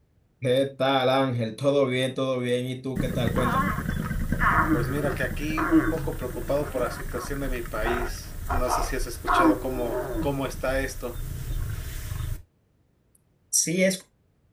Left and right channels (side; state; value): both; identical; correlation 1.00